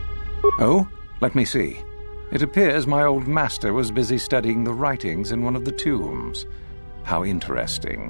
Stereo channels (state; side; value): inverted; both; correlation -1.00